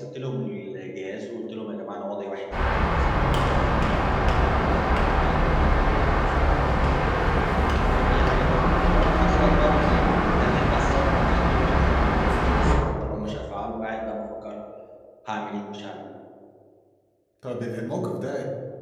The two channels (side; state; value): both; identical; correlation 1.00